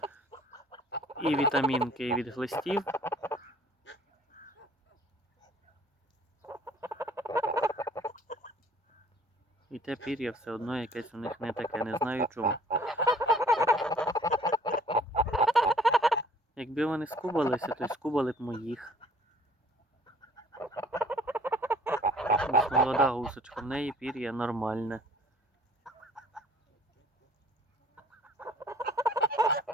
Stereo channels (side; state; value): both; normal; correlation 0.54